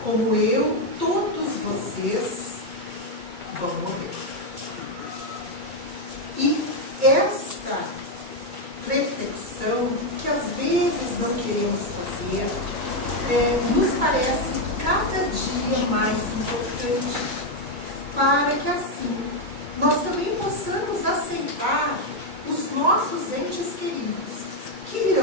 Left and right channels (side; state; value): left; late; 2.3 ms